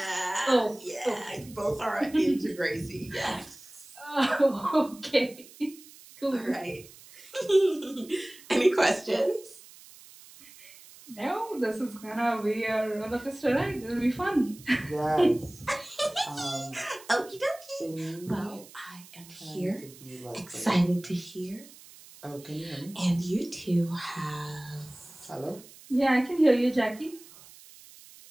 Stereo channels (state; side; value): noise; right; hiss, 21 dB below the sound